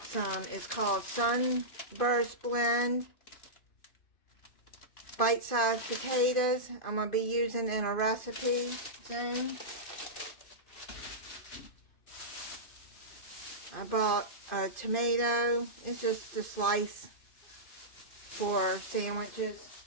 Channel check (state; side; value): late; right; 2.5 ms